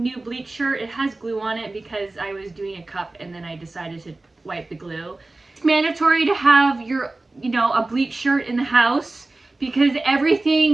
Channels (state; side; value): quieter; left; 3.1 dB